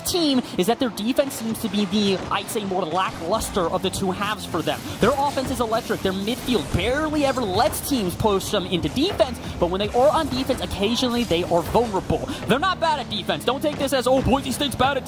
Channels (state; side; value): identical; both; correlation 1.00